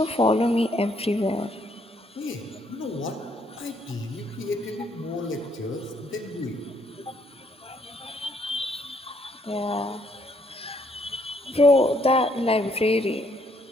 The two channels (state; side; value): normal; both; correlation 0.69